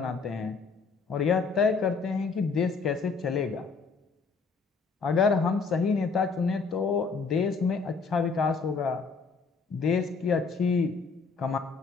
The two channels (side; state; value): right; quieter; 4.7 dB